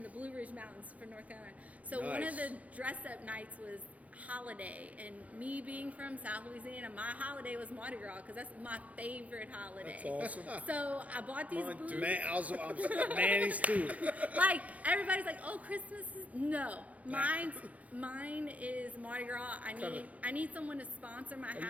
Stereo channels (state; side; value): late; left; 0.069 ms